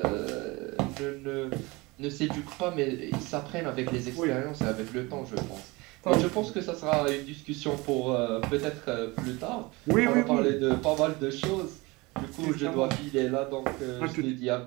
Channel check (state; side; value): quieter; left; 23.8 dB